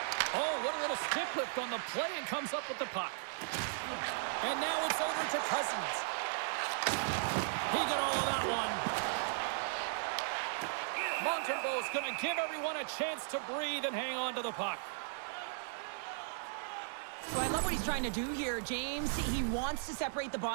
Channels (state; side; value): silent; left; digital silence